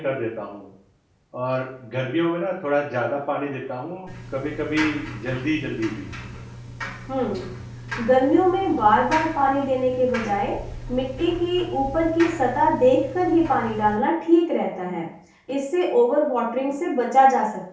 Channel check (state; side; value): identical; both; correlation 1.00